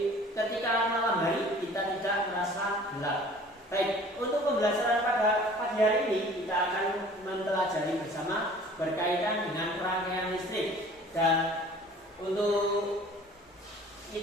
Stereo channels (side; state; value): both; normal; correlation 0.49